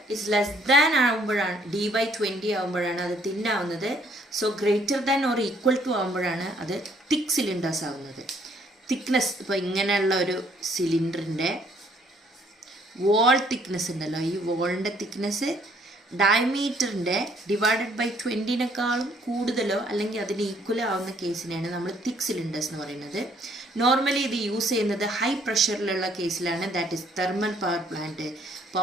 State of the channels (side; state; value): both; normal; correlation 0.65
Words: is less than ആകുമ്പോഴാണ് dy20 ആകുമ്പോഴാണ് അത് തിൻ ആവുന്നത്. So greater than or equal to ആകുമ്പോഴാണ് അത് തിക്ക് സിലിണ്ടേഴ്സ് ആവുന്നത്. തിക്നെസ് ഇപ്പോൾ ഇങ്ങനെയുള്ള ഒരു സിലിണ്ടറിൻ്റെ വോൾ തിക്നെസ് ഉണ്ടല്ലോ, ഈ വോളിൻ്റെ തിക്നെസ് ഡയമീറ്ററിൻ്റെ ഡിവൈഡഡ് ബൈ 20 കൂടുതലോ അല്ലെങ്കിൽ അതിന് ഈക്വൽ ആവുന്ന കേസിനെയാണ് നമ്മൾ തിക്ക് സിലിണ്ടേഴ്സ് എന്ന് പറയുന്നത്. നോർമലി ഇത് യൂസ് ചെയ്യുന്നത് ഹൈ പ്രഷറിലുള്ള കേസിലാണ്. That is thermal